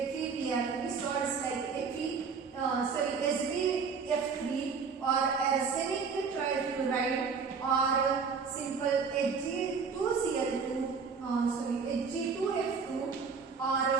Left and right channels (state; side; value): quieter; left; 5.5 dB